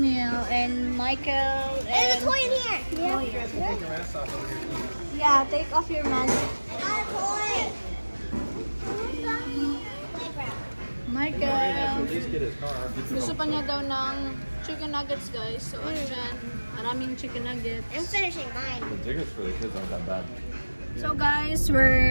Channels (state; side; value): inverted; both; correlation -1.00